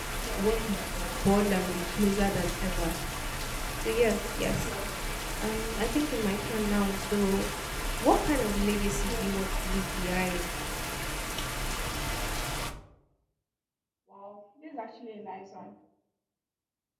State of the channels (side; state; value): both; identical; correlation 1.00